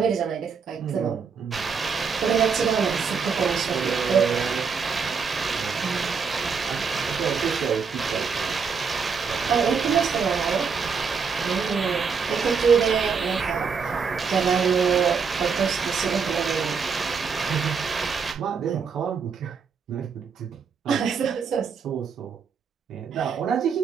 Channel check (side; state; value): left; quieter; 5.8 dB